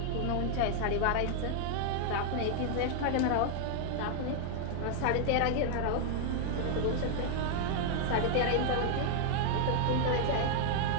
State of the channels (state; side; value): different; both; correlation 0.00